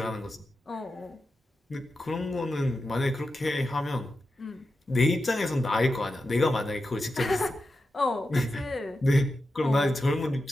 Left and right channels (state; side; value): normal; both; correlation 0.90